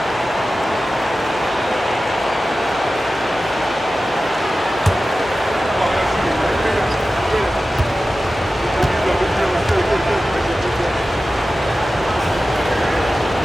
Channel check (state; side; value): normal; both; correlation 0.95